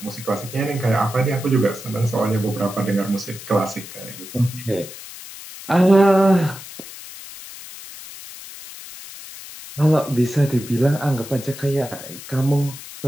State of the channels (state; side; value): noise; left; hiss, 14 dB below the sound